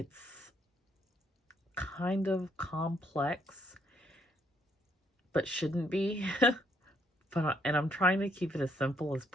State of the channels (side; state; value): both; normal; correlation 0.71